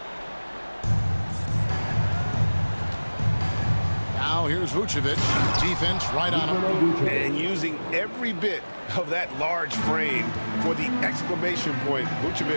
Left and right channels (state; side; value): inverted; both; correlation -1.00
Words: Now here's Vucevic. Defense right on him. And using every bit of that large frame for the exclamation point.